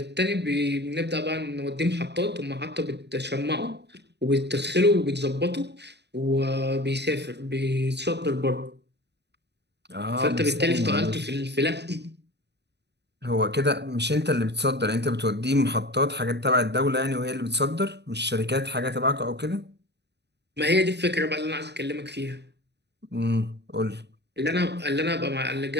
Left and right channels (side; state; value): left; late; 0.49 ms